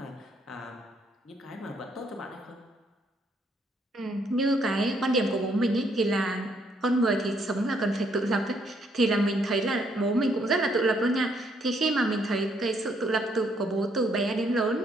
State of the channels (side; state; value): both; normal; correlation 0.70